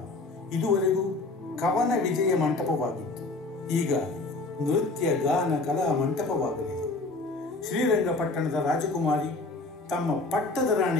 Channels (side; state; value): right; quieter; 3.4 dB